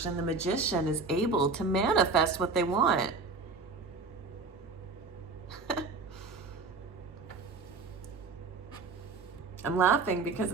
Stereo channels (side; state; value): left; quieter; 4.2 dB